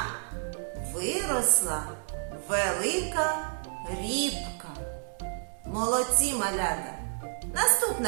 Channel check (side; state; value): left; silent; 58 dB below the other